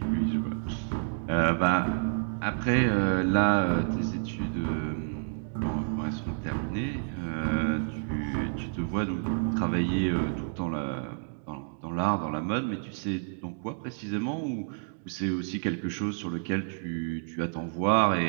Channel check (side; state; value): left; silent; digital silence